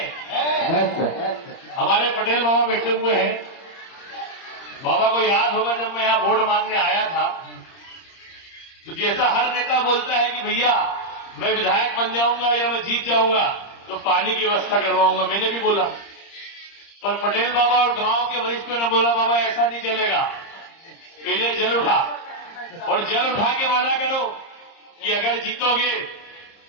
हमारे पटेल बाबा बैठे हुए हैं। बाबा को याद होगा जब मैं यहां वोट मांगने आया था तो जैसा हर नेता बोलता है कि भैया मैं विधायक बन जाऊंगा या मैं जीत जाऊंगा तो पानी की व्यवस्था करवाऊंगा, मैंने भी बोला। पर पटेल बाबा और गांव के वरिष्ठों ने बोला बाबा ऐसा नहीं चलेगा, पहले जल उठा और जल उठा के वादा करो कि अगर जीतोगे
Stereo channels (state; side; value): late; right; 30 ms